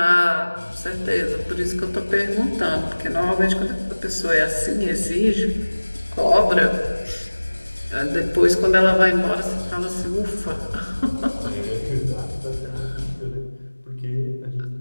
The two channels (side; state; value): both; inverted; correlation -1.00